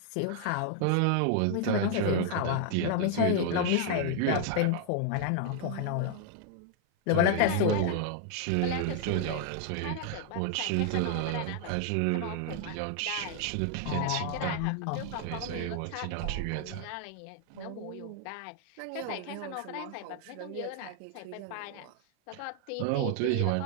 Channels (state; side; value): different; both; correlation 0.00